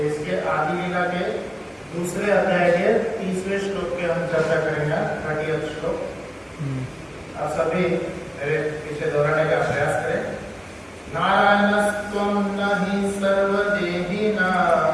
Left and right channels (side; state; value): both; identical; correlation 1.00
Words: इसके आदि लीला के दूसरे अध्याय के 30वें श्लोक के हम चर्चा करेंगे, 30th श्लोक। आप सभी मेरे पीछे दोहराने का प्रयास करें। नारायणस्त्वं न हि सर्वदेहिना।